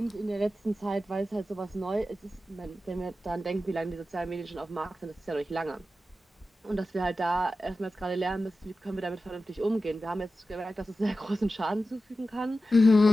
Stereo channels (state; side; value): normal; both; correlation 0.93